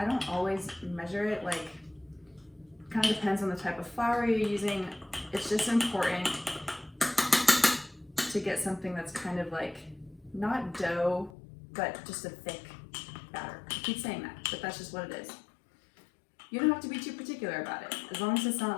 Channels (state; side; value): drops out; right; at 11.3 s